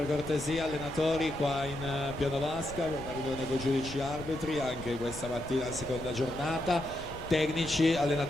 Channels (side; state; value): left; noise; rumble, 13 dB below the sound